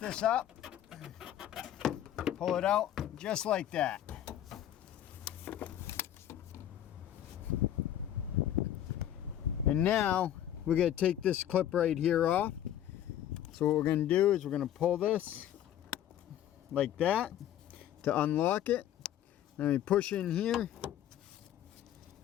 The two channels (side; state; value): right; quieter; 11.4 dB